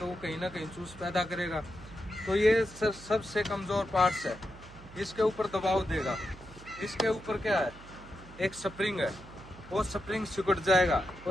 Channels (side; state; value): right; noise; hum, 19 dB below the sound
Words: वो कहीं ना कहीं चूस पैदा करेगा। तो ये सबसे कमजोर पार्ट्स है, इसके ऊपर दबाव देगा। इसके ऊपर क्या है, एक स्प्रिंग है, वो स्प्रिंग सिकुड़ जाएगा